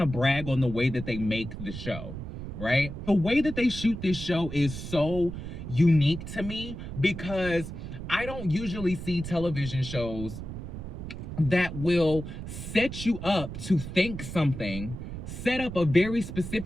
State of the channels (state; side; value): noise; right; rumble, 8 dB below the sound